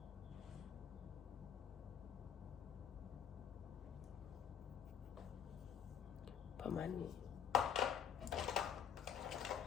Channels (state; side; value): quieter; right; 8.4 dB